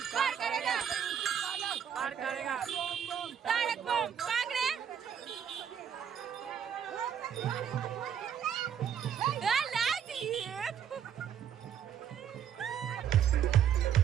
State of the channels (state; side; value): quieter; left; 8.6 dB